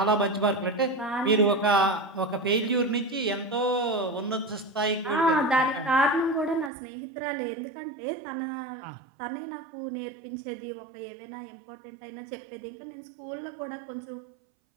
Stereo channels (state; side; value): drops out; left; at 6.7 s